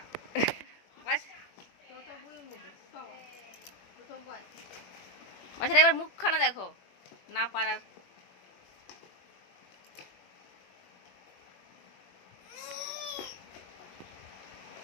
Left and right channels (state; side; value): late; right; 21 ms